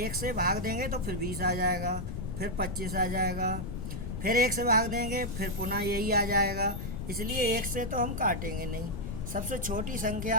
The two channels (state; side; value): noise; left; rumble, 6 dB below the sound